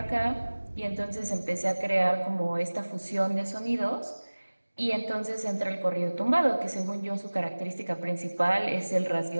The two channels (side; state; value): both; inverted; correlation -1.00